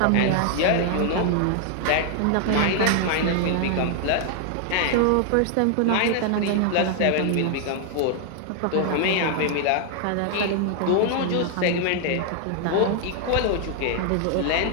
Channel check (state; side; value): different; both; correlation 0.00